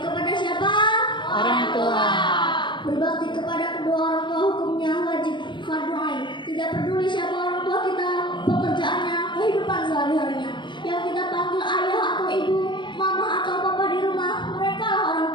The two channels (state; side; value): late; right; 0.23 ms